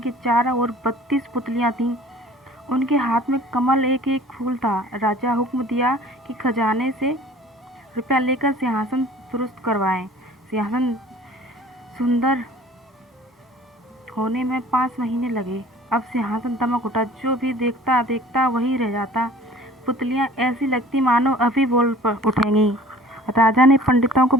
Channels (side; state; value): both; normal; correlation 0.48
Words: चारों ओर 32 पुतलियाँ थीं। उनके हाथ में कमल एक एक फूल था। राजा हुक्म दिया कि खजाने से रुपया लेकर सिंहासन दुरुस्त करवाएं। सिंहासन सुंदर होने में 5 महीने लगे। अब सिंहासन दमक उठा। जो भी देखता देखता वही रह जाता। पुतलियाँ ऐसी लगती मानो अभी बोल उठेंगी। राजा ने पंडितों को